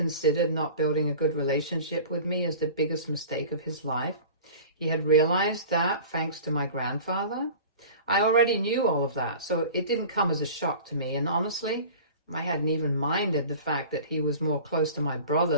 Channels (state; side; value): inverted; both; correlation -0.40